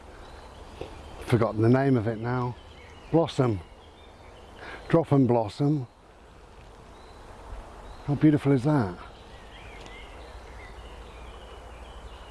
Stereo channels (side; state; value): both; identical; correlation 1.00